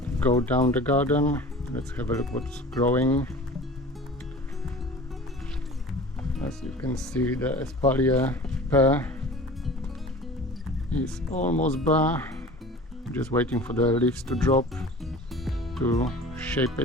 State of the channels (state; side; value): normal; both; correlation 0.40